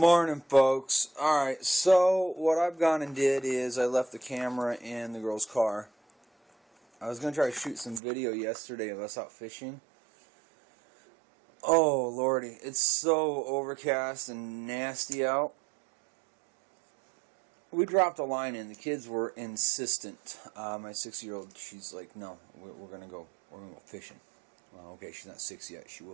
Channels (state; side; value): drops out; left; at 8.0 s